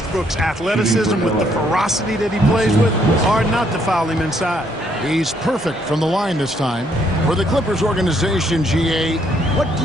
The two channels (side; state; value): both; normal; correlation 0.70